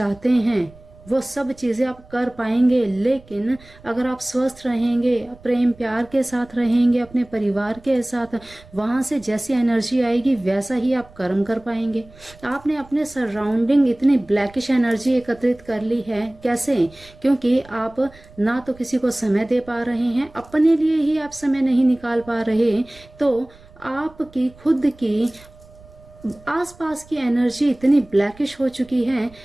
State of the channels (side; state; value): right; noise; rumble, 24 dB below the sound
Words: हैं वो सब चीज़ें आप कर पाएंगे, लेकिन अगर आप स्वस्थ रहेंगे, प्रेम प्यार के साथ रहेंगे अपने परिवार के साथ, वहाँ से जैसी एनर्जी आएगी वैसा ही आप कर्म कर पाएंगे। आपने अपने सराउंडिंग इतनी ब्लैकिश एनर्जी एकत्रित कर ली है, कैसे? क्योंकि आप ना तो किसी को समय दे पा रहे हैं, अपने लिए ही आप समय नहीं निकाल पा रहे, तो आपकी खुद की आसपास की एनर्जी इतनी ब्लैकिश हो चुकी है